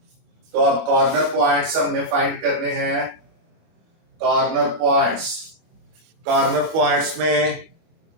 तो अब कॉर्नर पॉइंट्स हमने फाइंड करने हैं, कॉर्नर पॉइंट्स, कॉर्नर पॉइंट्स में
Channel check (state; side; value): late; left; 25 ms